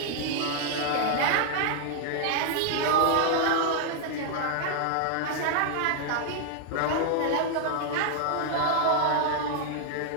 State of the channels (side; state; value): both; different; correlation 0.00